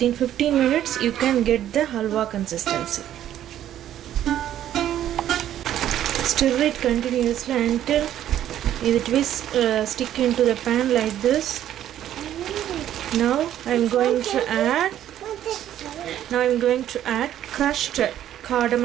minutes you can get the halwa consistency. Stir it continuously until it will stick into the pan like this. Now I am going to add crushed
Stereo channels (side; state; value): left; quieter; 11.5 dB